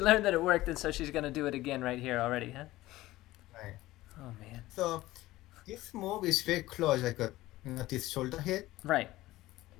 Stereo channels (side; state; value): right; quieter; 17.1 dB